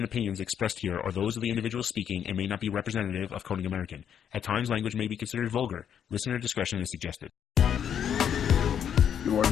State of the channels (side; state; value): right; quieter; 8.7 dB